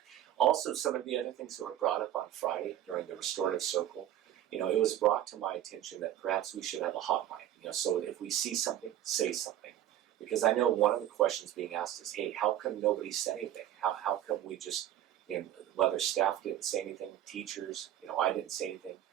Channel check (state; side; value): quieter; left; 12.1 dB